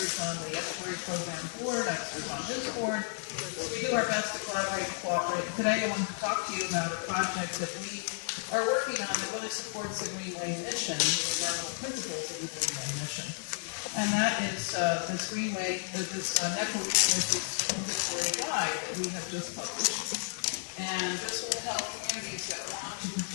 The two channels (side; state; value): right; silent; digital silence